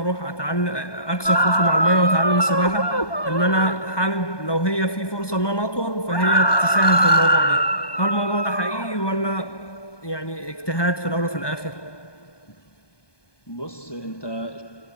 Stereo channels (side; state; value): right; late; 1.2 ms